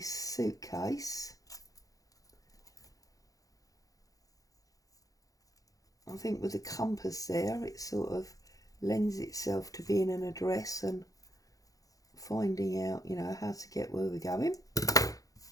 suitcase. I think with the compass there, it sort of lends itself to being an address and finding out, you know, how to get where we're going.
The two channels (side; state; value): right; late; 0.17 ms